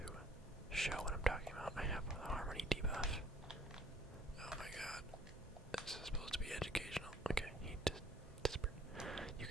show what I'm talking about, I have the harmony debuff. Oh my god. This is supposed to be educational. Okay, he just disappeared. You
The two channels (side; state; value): both; normal; correlation 0.58